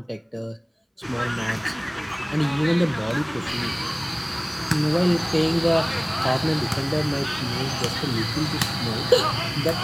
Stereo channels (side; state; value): both; identical; correlation 1.00